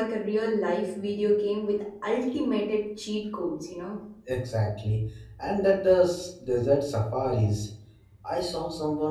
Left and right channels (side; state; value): both; identical; correlation 1.00